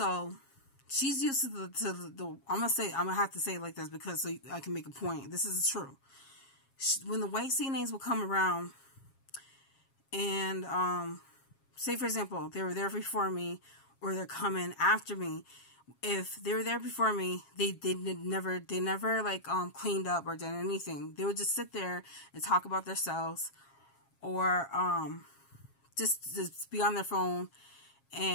she's used to the I'm gonna have to say it like this, because so I can make a point. This is true. When the white CNAs will come around, and say for example they were there before me, or they're coming after me. If they were there before me, they never like cleaned up or did anything. They would just sit there and talk about themselves, or just be on their phone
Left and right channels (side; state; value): right; late; 7.4 ms